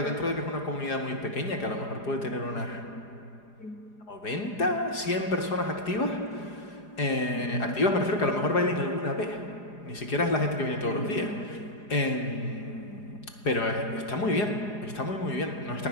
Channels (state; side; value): late; right; 4.9 ms